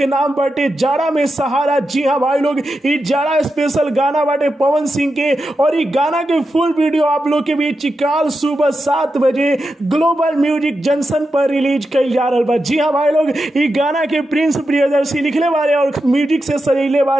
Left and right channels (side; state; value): both; normal; correlation 0.88